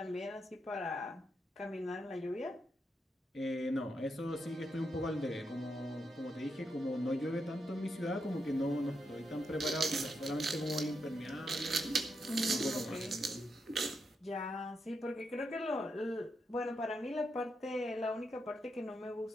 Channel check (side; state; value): both; normal; correlation 0.83